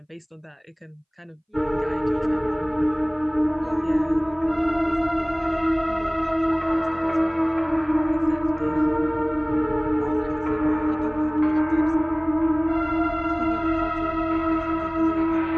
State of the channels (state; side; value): identical; both; correlation 1.00